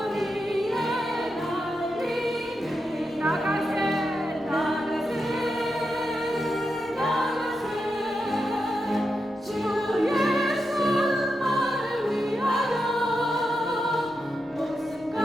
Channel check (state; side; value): normal; both; correlation 0.87